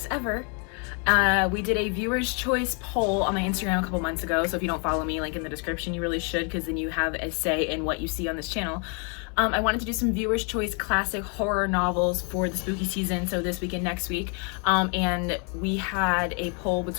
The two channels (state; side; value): quieter; right; 37.0 dB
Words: ever. We did a viewer's choice poll on my Instagram a couple months ago, so if you don't follow me, link in the description, you really should, because then you have a say in what you see on this channel. I wanted to do some viewer's choice classic horror novels for the spooky season, so this week and next week. And we had a poll